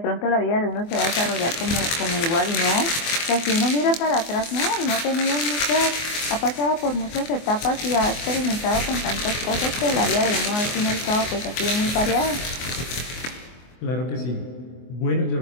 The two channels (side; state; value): right; late; 24 ms